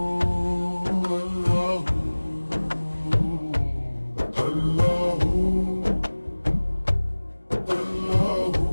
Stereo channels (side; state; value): both; inverted; correlation -1.00